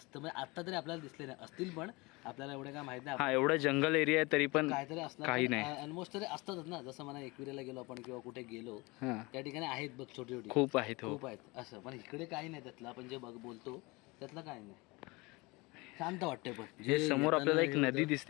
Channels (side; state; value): right; quieter; 24.7 dB